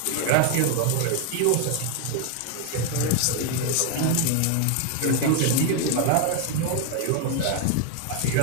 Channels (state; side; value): different; both; correlation 0.01